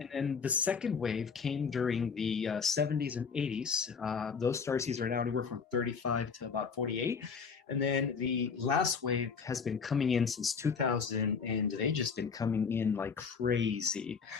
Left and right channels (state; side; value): quieter; right; 5.8 dB